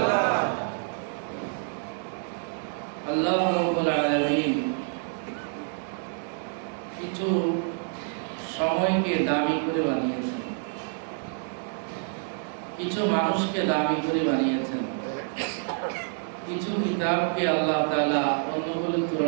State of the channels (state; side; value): silent; left; 60 dB below the other